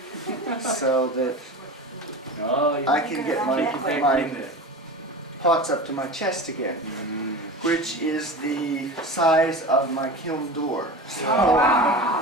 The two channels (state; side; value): normal; both; correlation 0.30